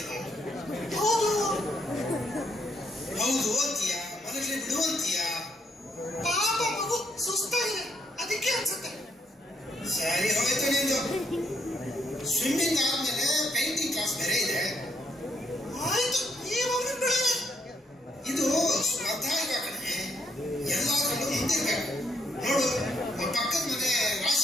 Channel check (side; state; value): both; normal; correlation 0.74